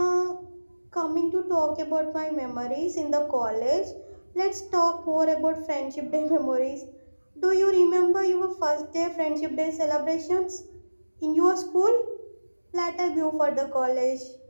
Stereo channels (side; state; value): both; inverted; correlation -1.00